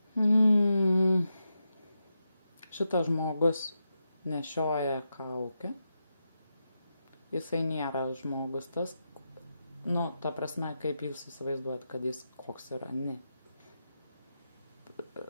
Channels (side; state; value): both; inverted; correlation -0.87